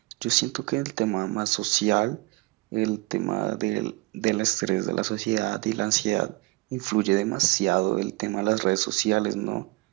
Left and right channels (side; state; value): left; quieter; 23.9 dB